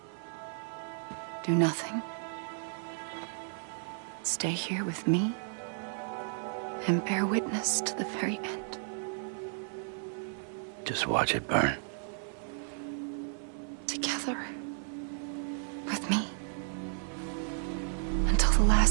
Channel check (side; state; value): left; silent; 56 dB below the other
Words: Do nothing. Stay here with me and bear witness to the very end. Just watch it burn. Together. With me. Until the